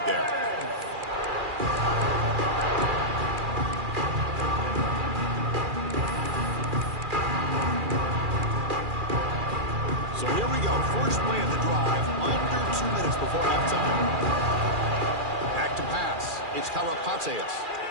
there. So here we go. First play of the drive, under 2 minutes before halftime. Back to pass. It's Karapateas.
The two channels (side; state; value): left; late; 2.4 ms